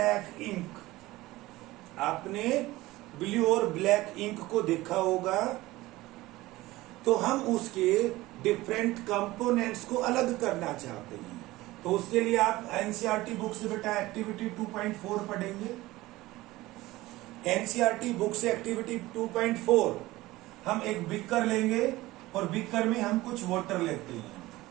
इंक। आपने ब्लू और ब्लैक इंक को देखा होगा, तो हम उसके डिफरेंट कंपोनेंट्स को अलग करना चाहते हैं। तो उसके लिए आप एनसीईआरटी बुक से बेटा एक्टिविटी 2.4 पढ़ेंगे। एनसीईआरटी बुक से एक्टिविटी 2.4 हम एक बीकर लेंगे और बीकर में हम कुछ वाटर लेते हैं।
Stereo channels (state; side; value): quieter; left; 18.5 dB